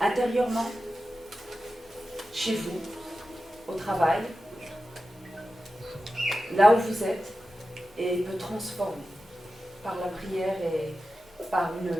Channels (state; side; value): normal; both; correlation 0.92